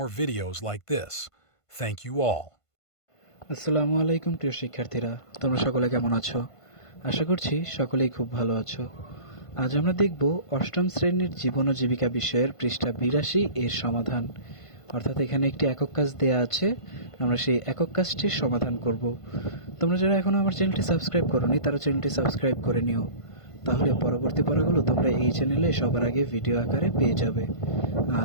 videos like this. Thank you all. আসসালামু আলাইকুম প্রিয় শিক্ষার্থীরা, তোমরা সকলে কেমন আছো? আশা করছি সকলেই খুব ভালো আছো। আজ আমরা দেখব অষ্টম শ্রেণীর জীবন ও জীবিকা বিষয়ের পৃষ্ঠা 82 এর সমাধান। অর্থাৎ এখানে একটি একক কাজ দেয়া আছে, আমরা সেই একক কাজটির সমাধান করব। তোমরা যারা এখনো আমার চ্যানেলটি সাবস্ক্রাইব করোনি তারা চ্যানেলটি সাবস্ক্রাইব করে নিও, তাহলে পরবর্তী পড়াগুলো তোমরা এই চ্যানেলে সবার আগে ভিডিও আকারে পেয়ে যাবে।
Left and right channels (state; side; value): late; right; 1.5 ms